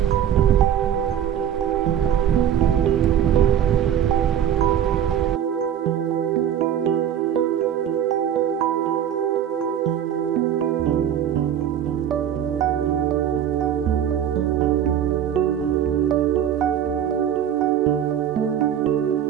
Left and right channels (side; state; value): left; quieter; 9.8 dB